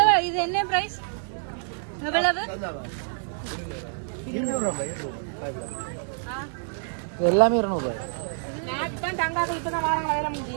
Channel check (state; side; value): silent; left; digital silence